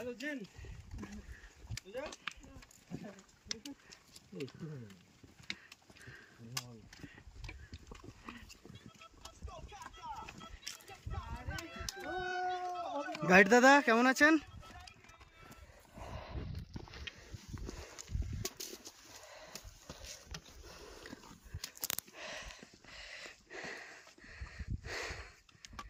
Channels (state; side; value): identical; both; correlation 1.00